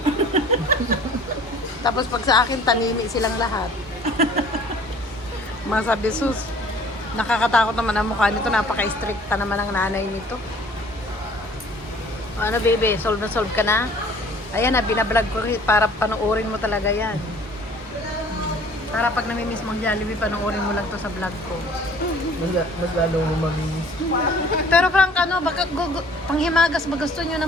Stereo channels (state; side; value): normal; both; correlation 0.52